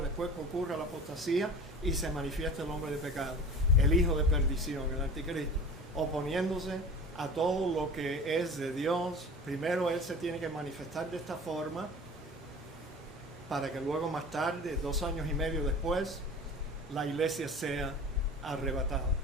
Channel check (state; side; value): normal; both; correlation 0.38